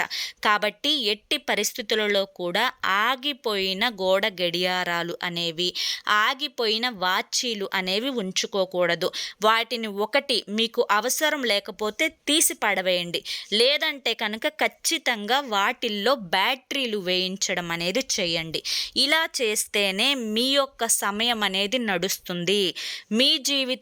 కాబట్టి ఎట్టి పరిస్థితులలో కూడా ఆగిపోయిన గోడ గడియారాలు అనేవి, ఆగిపోయిన వాచీలు అనేవి ఉంచుకోకూడదు. వాటిని ఒకటి మీకు అవసరం లేకపోతే తీసి పడవేయండి. లేదంటే కనుక ఖచ్చితంగా వాటిల్లో బ్యాటరీలు వేయించడం అనేది చేయండి. ఇలా చేస్తేనే మీ యొక్క సమయం అనేది నడుస్తుంది. మీ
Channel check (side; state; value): both; identical; correlation 1.00